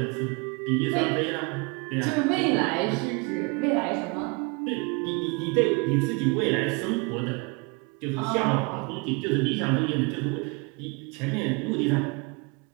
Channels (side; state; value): left; quieter; 29.7 dB